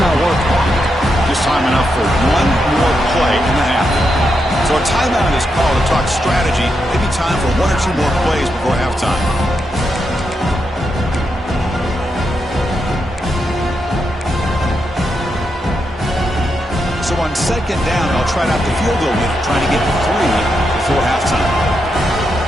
working. Just time enough for one more play in the half. So a timeout is called to talk strategy. Maybe time for one or two more plays before halftime. So on second down, I'll try out the field goal unit, trying to get 3 before halftime.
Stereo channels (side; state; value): both; normal; correlation 0.84